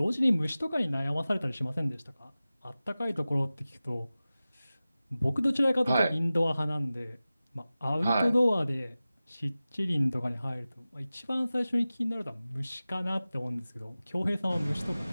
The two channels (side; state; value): both; inverted; correlation -0.96